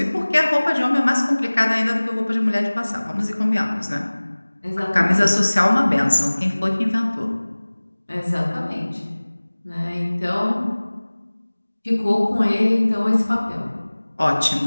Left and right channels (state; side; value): inverted; both; correlation -1.00